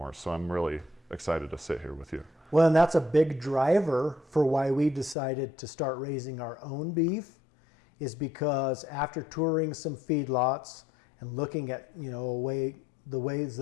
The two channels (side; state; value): right; drops out; at 5.2 s